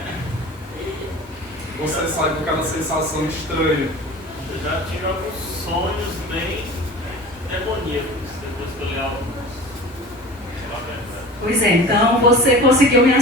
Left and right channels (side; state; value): both; normal; correlation 0.38